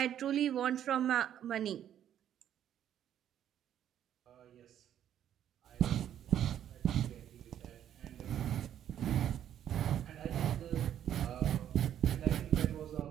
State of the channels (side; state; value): left; quieter; 10.4 dB